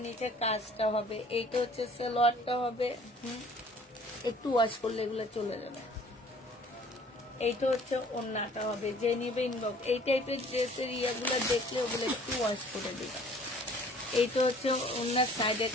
নিচে কাজটা হবে। এইটা হচ্ছে সালোয়ারটা হবে। একটু ওয়াশ করলে এগুলো চলে যাবে। এইটা হচ্ছে ওড়নাটা হবে। যে নিবে ইনবক্স। এই টাইপের ড্রেসের ইয়াগুলো দেখলে ওগুলো একটু ওয়াশ করে দিবে। এইটা হচ্ছে ওড়নার সাইডের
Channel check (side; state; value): both; normal; correlation 0.53